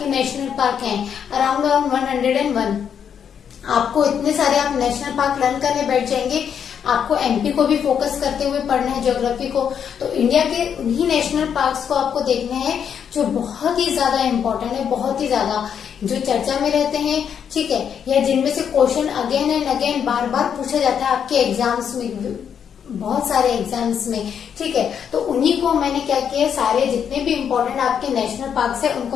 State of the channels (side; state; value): right; quieter; 8.0 dB